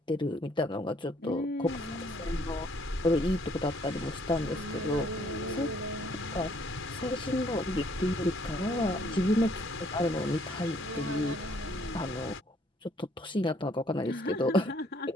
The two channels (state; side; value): normal; both; correlation 0.65